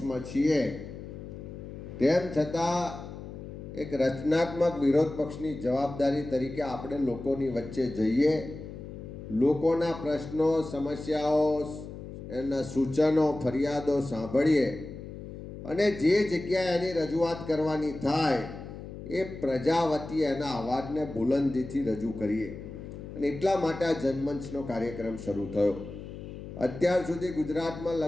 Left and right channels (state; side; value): noise; left; hum, 11 dB below the sound